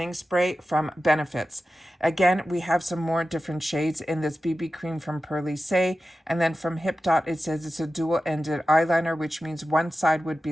spray from Benefits. Again, we have some more different shades in this BB cream from Pearly Say. And then from Hip Dot, it says it's a dual-ended eyeliner, which means one side would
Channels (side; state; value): both; normal; correlation 0.93